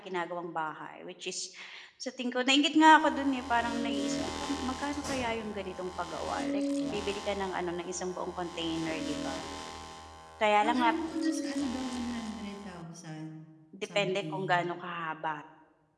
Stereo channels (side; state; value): both; identical; correlation 1.00